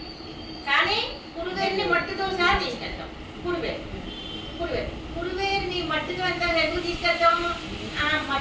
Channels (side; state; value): both; identical; correlation 1.00